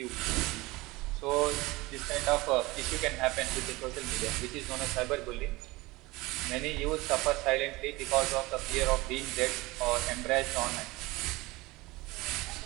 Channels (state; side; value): quieter; left; 21.5 dB